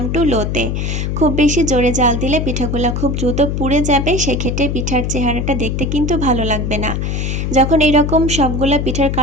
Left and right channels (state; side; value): noise; left; hum, 1 dB below the sound